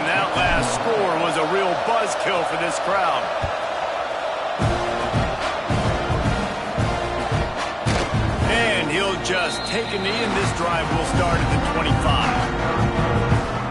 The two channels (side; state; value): both; identical; correlation 1.00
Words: that last score was a real buzzkill for this crowd. And he'll just take a knee, and this drive will start at the 25.